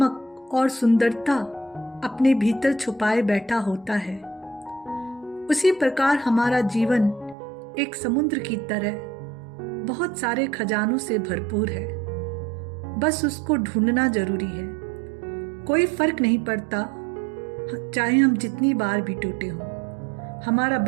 और सुंदरता अपने भीतर छुपाए बैठा होता है। उसी प्रकार हमारा जीवन एक समुद्र की तरह बहुत सारे खजानों से भरपूर है। बस उसको ढूंढना जरूरी है। कोई फर्क नहीं पड़ता चाहे हम जितनी बार भी टूटे हों, हमारा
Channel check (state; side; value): drops out; left; at 7.4 s